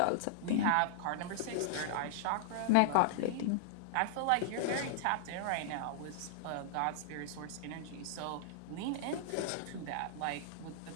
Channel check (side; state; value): both; different; correlation -0.01